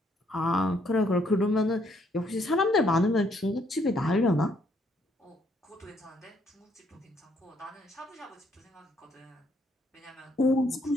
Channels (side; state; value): both; normal; correlation 0.69